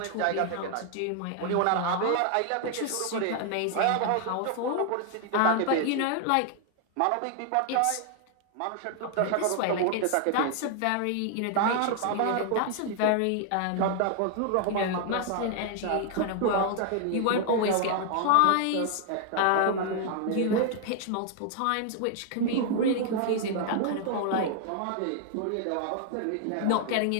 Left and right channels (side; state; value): both; different; correlation 0.00